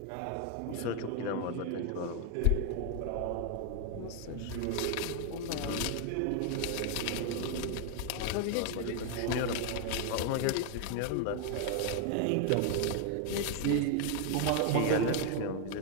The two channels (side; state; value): both; different; correlation 0.01